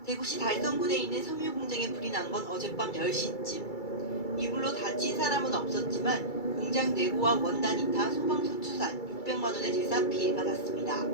대구시 달성군에 있는 섬유 공장에 불이 난 건 어젯밤 10시쯤. 이 불로 다친 사람은 없었지만 공장 내부와 원단이 타 소방서 추산 600만 원의 재산 피해가 났습니다.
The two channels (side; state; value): right; late; 2.3 ms